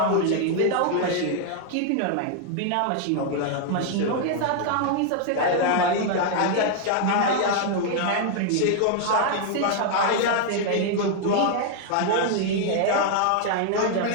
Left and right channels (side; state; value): both; different; correlation 0.00